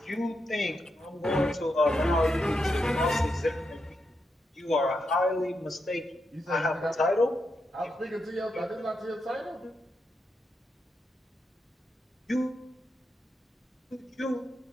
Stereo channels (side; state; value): both; normal; correlation 0.84